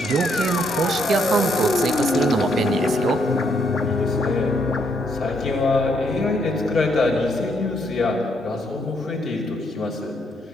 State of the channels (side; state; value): both; normal; correlation 0.73